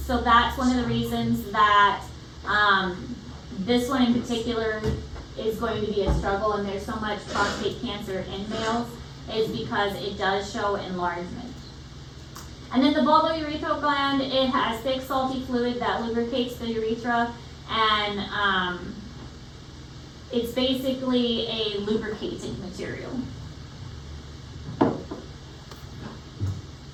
so that's one of the reasons that this one in particular is going to be a struggle, and there's so much prostate cancer in males, is because it does show enlargement. And then the bulbourethral gland, it has thick salty fluid that lubricates the urethra, and it's basically a lubricating material.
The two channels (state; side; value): identical; both; correlation 1.00